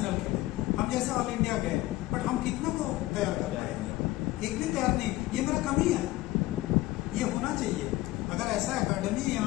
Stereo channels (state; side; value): quieter; right; 17.7 dB